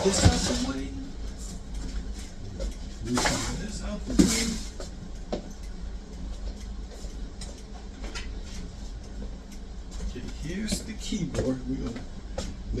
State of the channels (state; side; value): identical; both; correlation 1.00